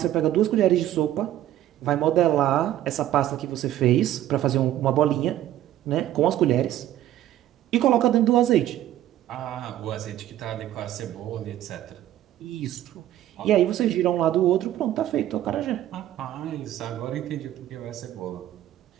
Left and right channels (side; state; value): left; quieter; 12.9 dB